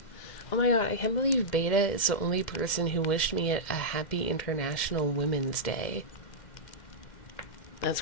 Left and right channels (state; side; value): late; right; 2.1 ms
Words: Oh my god, I can't believe Beta is the only person who wished me a happy International Women's Day. That's